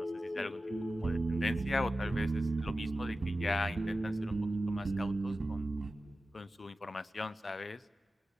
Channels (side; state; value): both; normal; correlation 0.94